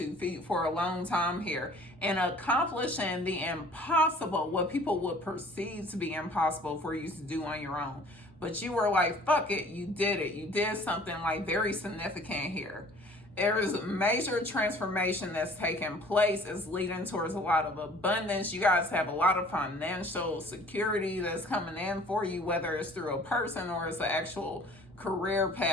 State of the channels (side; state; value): both; normal; correlation 0.51